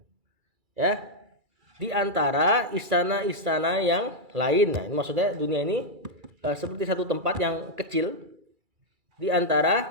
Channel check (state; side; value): late; left; 2.3 ms